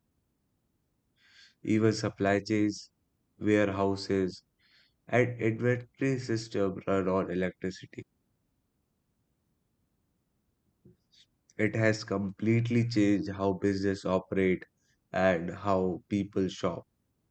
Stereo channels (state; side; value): identical; both; correlation 1.00